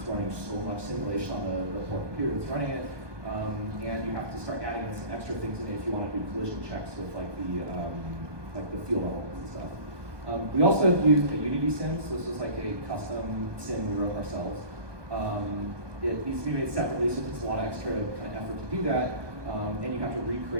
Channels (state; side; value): late; left; 1.2 ms